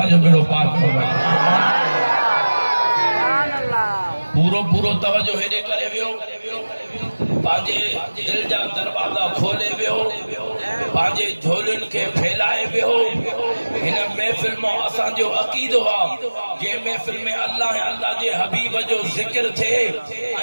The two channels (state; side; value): inverted; both; correlation -1.00